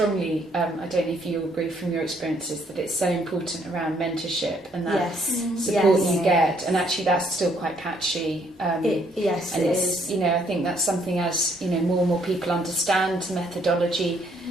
I don't know if you agree from your experiences, that it's so important around mentorship and that support you get, and actually that's still quite patchy. It is. I think that's something as more and more people understand methodology.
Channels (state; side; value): normal; both; correlation 0.68